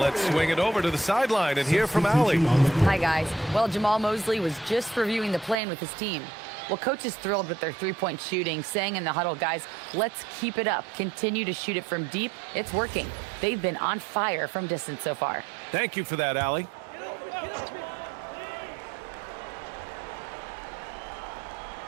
swing it over to the sideline and hear from Allie. Hi, guys. Well, Jamal Mosley was just reviewing the plan with his team. Well, coach is thrilled with their three-point shooting, saying in the huddle, guys, let's keep it up. Continue to shoot it from deep. It's working. They've been on fire from distance so far. Thank you for that, Allie.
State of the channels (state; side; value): drops out; left; at 5.6 s